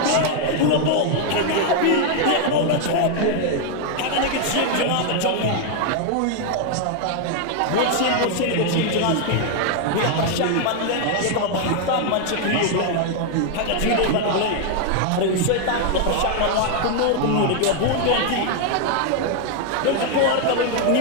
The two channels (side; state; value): both; different; correlation 0.00